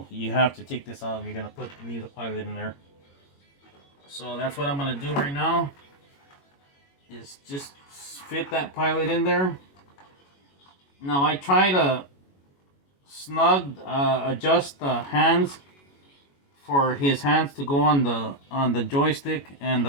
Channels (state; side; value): late; right; 21 ms